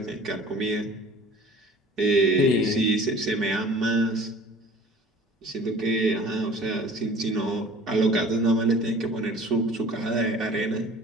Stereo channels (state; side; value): normal; both; correlation 0.46